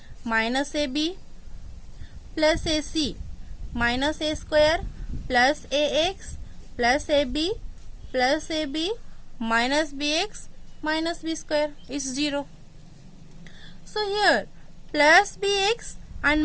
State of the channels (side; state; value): both; identical; correlation 1.00